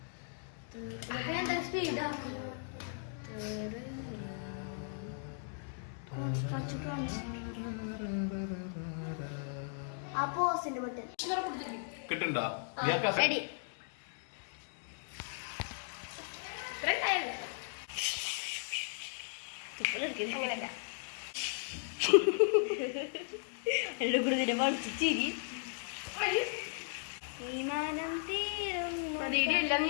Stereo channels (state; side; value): silent; right; digital silence